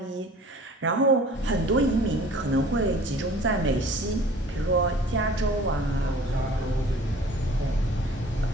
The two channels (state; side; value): normal; both; correlation 0.48